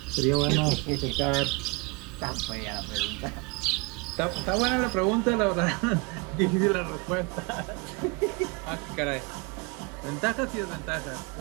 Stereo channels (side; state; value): left; quieter; 28.7 dB